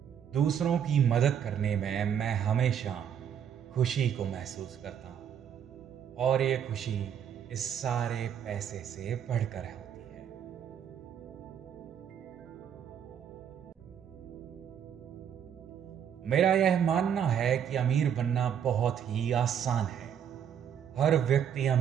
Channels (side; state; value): left; quieter; 8.6 dB